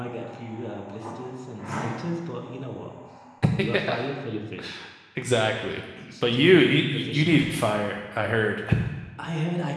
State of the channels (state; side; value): identical; both; correlation 1.00